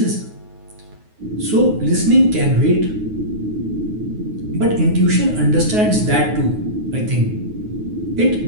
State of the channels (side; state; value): left; late; 9.5 ms